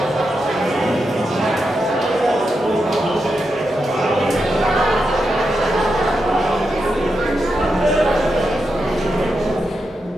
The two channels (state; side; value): normal; both; correlation 0.86